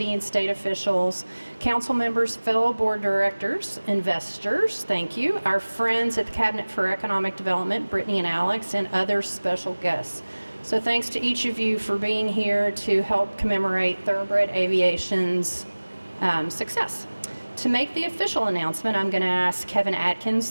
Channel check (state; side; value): inverted; both; correlation -1.00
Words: and state officials, council members, fellow board directors, investors, thank you, our friends at the Cabinet for Economic Development, Brittany and Alex, and other special guests. So thanks to each of you for being here to help commemorate Thoroughbred Aviation's success. To make the official announcement, I'm going to ask Kevin